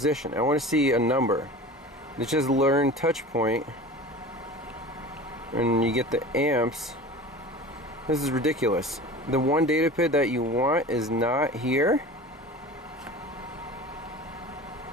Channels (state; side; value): normal; both; correlation 0.37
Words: I want to see a number. It's just learn touch point. And you get the amps. This is ridiculous. The one data PID that you want is not here.